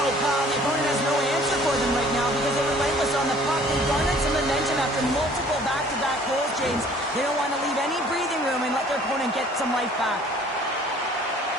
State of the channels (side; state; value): both; normal; correlation 0.54